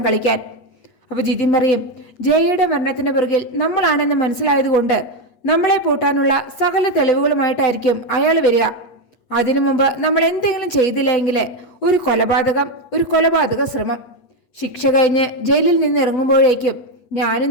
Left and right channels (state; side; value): late; right; 8.3 ms